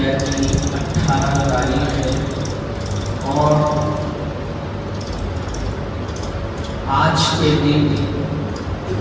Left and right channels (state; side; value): identical; both; correlation 1.00